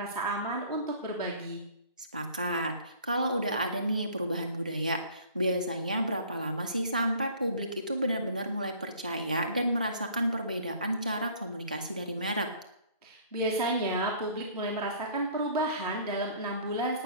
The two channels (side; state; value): both; inverted; correlation -0.52